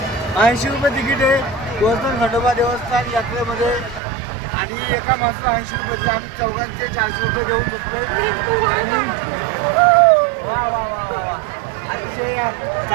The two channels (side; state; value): left; drops out; at 4.0 s